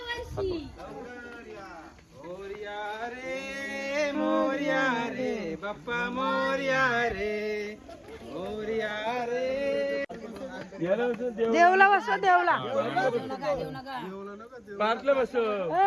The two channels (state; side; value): identical; both; correlation 1.00